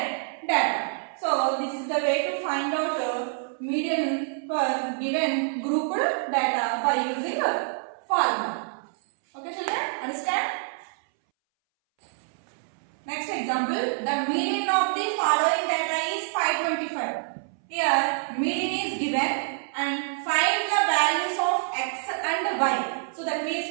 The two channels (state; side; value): silent; left; 60 dB below the other